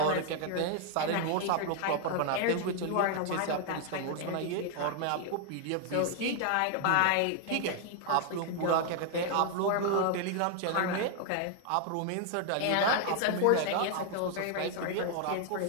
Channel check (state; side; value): different; both; correlation 0.00